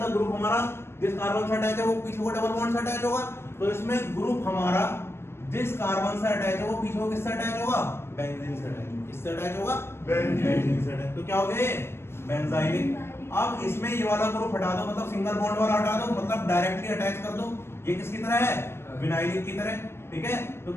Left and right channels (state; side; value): late; right; 0.12 ms